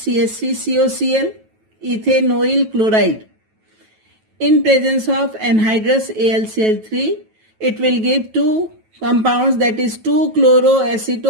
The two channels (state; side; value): late; left; 9.2 ms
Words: Ethanoyl chloride. In presence of anhydrous AlCl3, it will give two compounds, that is